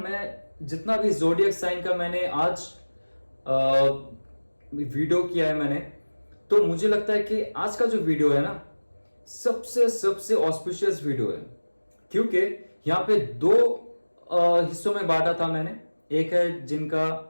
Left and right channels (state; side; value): inverted; both; correlation -1.00